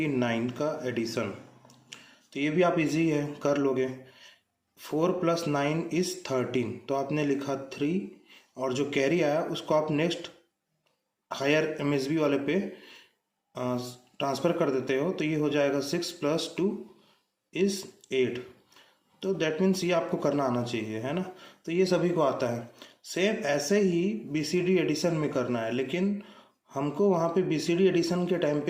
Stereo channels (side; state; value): both; identical; correlation 1.00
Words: का एडिशन। तो ये भी आप इजी है, कर लोगे। 4 प्लस 9 इज़ 13, तो आपने लिखा 3 और जो कैरी आया उसको आप नेक्स्ट हायर एमएसबी वाले पे ट्रांसफ़र कर देते हो। तो ये हो जाएगा 6 प्लस 2 इज़ 8। तो दैट मीन्स ये आपको करना आना चाहिए, है ना। तो ये सभी को आता है। सेम ऐसे ही बीसीडी एडिशन में करना है, लेकिन हमको वहाँ पे बीसीडी एडिशन के टाइम